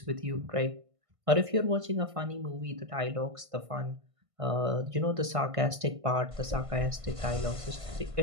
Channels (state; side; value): late; left; 1.5 ms